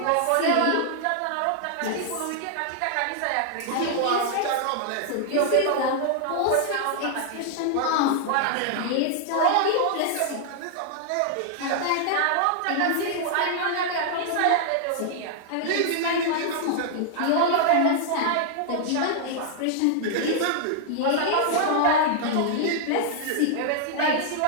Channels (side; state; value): both; different; correlation -0.01